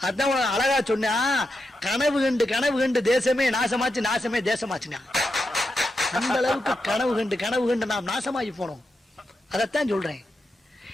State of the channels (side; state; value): both; normal; correlation 0.87